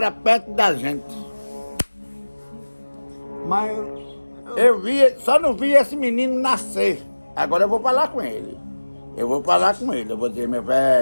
perto da gente. Mas... Só não vi esse menino nascer. Agora eu vou falar com ele. Eu vou dizer, meu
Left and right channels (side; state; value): both; inverted; correlation -1.00